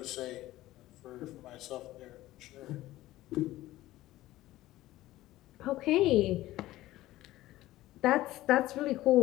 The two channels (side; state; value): right; quieter; 16.1 dB